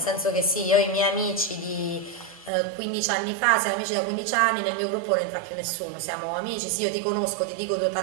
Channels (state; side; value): drops out; left; at 2.5 s